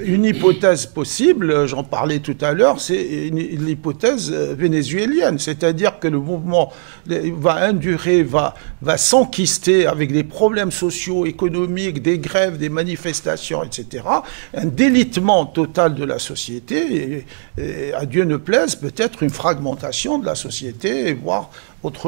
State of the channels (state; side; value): silent; left; digital silence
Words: une hypothèse possible, j'en parlais tout à l'heure, c'est l'hypothèse vénézuélienne, c'est-à-dire que le mouvement va endurer, va s'enquister avec des problèmes sociaux, économiques, des grèves, des manifestations, etc. Un délitement total de la société, et à Dieu ne plaise, peut-être une fragmentation de la société, voire